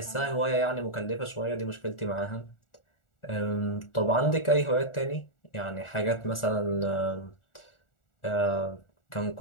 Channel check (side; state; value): right; late; 1.4 ms